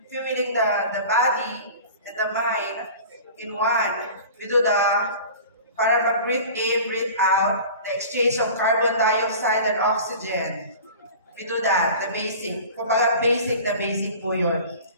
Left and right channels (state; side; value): inverted; both; correlation -0.39